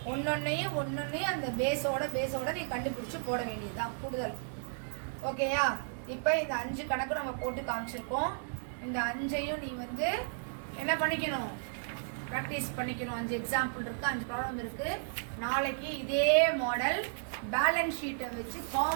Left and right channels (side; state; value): left; silent; 55 dB below the other